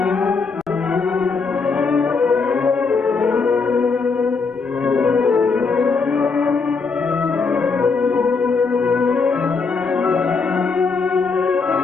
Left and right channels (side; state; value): right; quieter; 4.7 dB